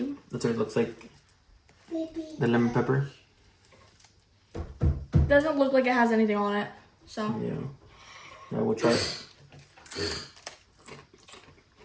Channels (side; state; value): both; identical; correlation 1.00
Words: that's what it looks like. The lemon pepper. Doesn't look like it has anything on it. So Yeah. Now we'll try it.